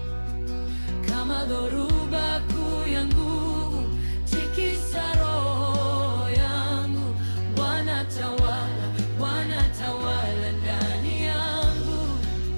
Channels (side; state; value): both; inverted; correlation -1.00